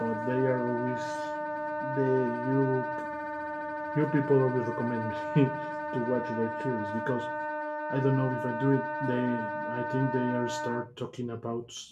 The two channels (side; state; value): both; identical; correlation 1.00